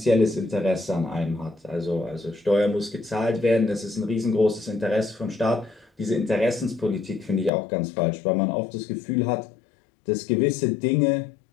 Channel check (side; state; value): right; drops out; at 7.5 s